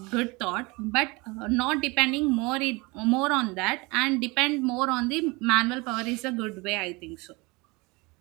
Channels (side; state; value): left; quieter; 25.7 dB